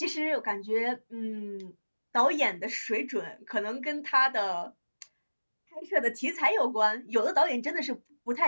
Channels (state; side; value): inverted; both; correlation -1.00